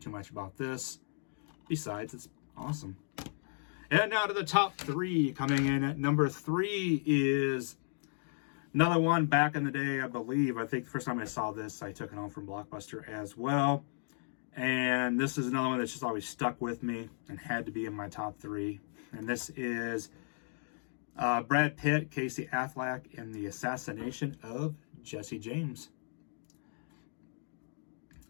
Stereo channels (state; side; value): silent; right; digital silence